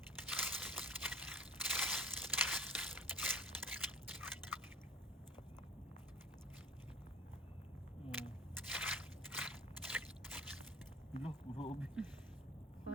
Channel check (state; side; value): normal; both; correlation 0.43